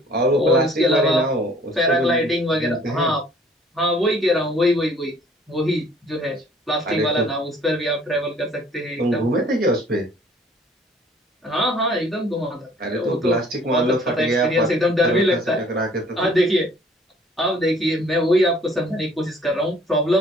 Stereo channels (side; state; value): both; normal; correlation 0.56